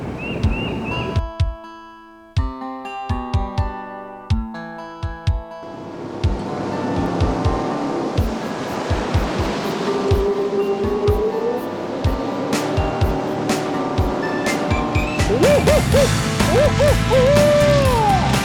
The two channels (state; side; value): identical; both; correlation 1.00